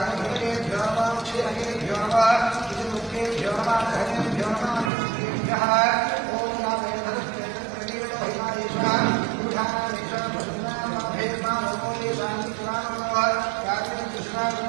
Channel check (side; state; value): left; drops out; at 4.9 s